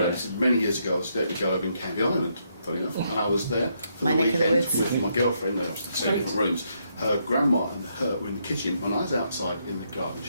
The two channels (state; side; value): inverted; both; correlation -0.76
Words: Many years ago I was let me go over in Canby Island, funny enough, and I was there for the weekend with my girlfriend. I was in the same different rooms. Her grandma and her were in the kitchen when I was outside in the garden